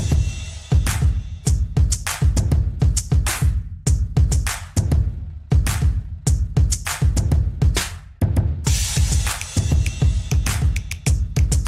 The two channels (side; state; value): both; identical; correlation 1.00